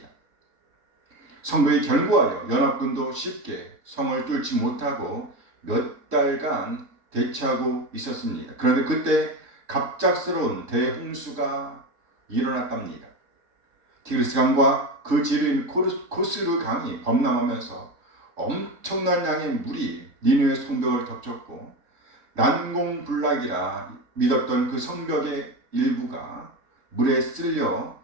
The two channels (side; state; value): left; late; 3.7 ms